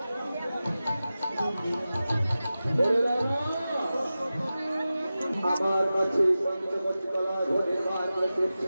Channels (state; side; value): inverted; both; correlation -0.94